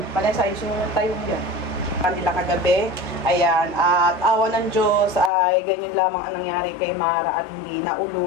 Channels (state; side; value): drops out; right; at 5.3 s